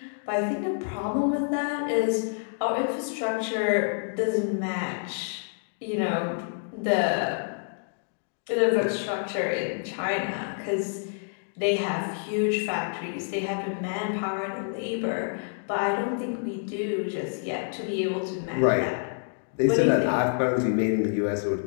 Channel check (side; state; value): right; silent; digital silence